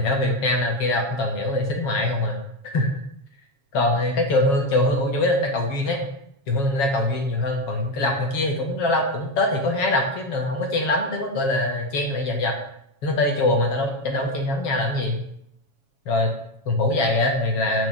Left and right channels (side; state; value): right; late; 7.3 ms